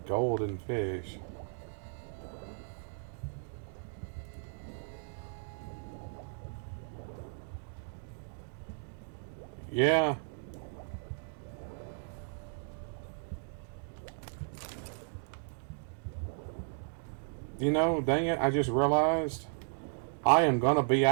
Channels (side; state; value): left; silent; digital silence